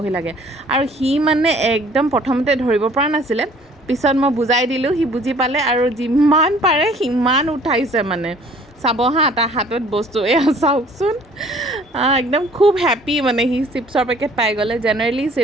লাগে আৰু সি মানে একদম প্ৰথমতে ধৰিব পৰা নাছিলে পিছত মই বুজাই দিলোঁ সি বুজি পালে আৰু যিমান পাৰে সিমান উঠাইছে মানে চাব হা তাৰ হাতত বস্তু এয়া চাওকচোন একদম খুব হেপ্পী মানে সি চিপছৰ পেকেট পাই গ'লে জেনেৰেলি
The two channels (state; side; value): normal; both; correlation 0.55